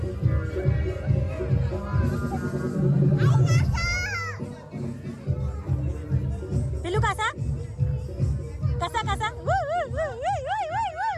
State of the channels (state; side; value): identical; both; correlation 1.00